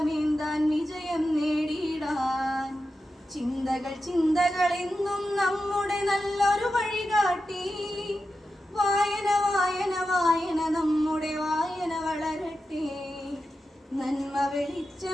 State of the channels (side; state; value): both; normal; correlation 0.90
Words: വിജയം നേടിയിടാൻ. ചിന്തകൾ ചിന്തകൾ എന്നും നമ്മുടെ നല്ലൊരു വഴികാട്ടി. വായന വായന വായന നമ്മുടെ വായന വളരട്ടെ, നന്മ